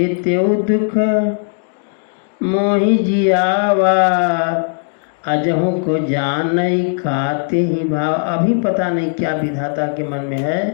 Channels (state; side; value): silent; right; digital silence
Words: त्यों दुख मोहि जियावा, अजहू को जानई खाते ही भाव। अभी पता नहीं क्या विधाता के मन में है,